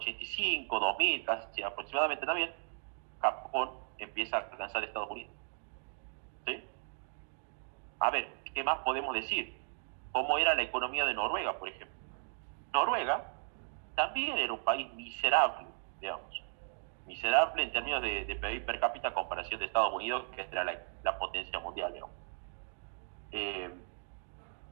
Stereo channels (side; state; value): left; silent; 54 dB below the other